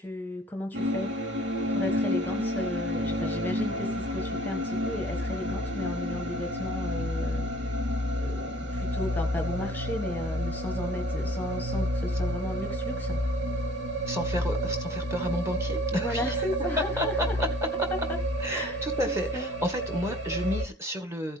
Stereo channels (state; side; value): normal; both; correlation 0.52